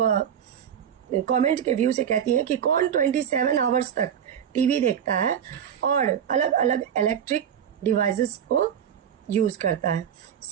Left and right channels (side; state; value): left; quieter; 8.8 dB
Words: कमेंट के व्यू से कहती है कि कौन 27 आवर्स तक टीवी देखता है और अलग अलग इलेक्ट्रिक डिवाइसेस को यूज करता है।